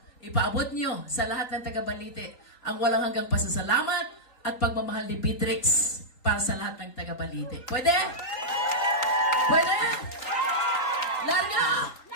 ipaabot nyo sa lahat ng taga Balite ang walang hanggang pasasalamat at pagmamahal ni Beatrix para sa lahat ng taga Balite. Pwede? Pwede? Larga!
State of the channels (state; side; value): late; right; 3.9 ms